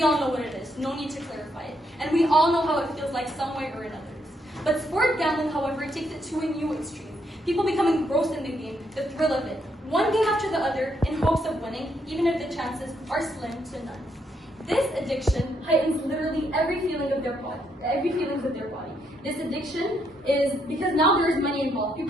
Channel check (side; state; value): both; normal; correlation 0.75